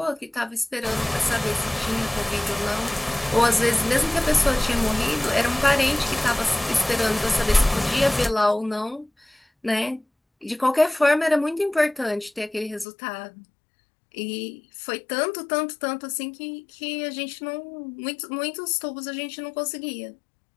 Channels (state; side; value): drops out; right; at 12.9 s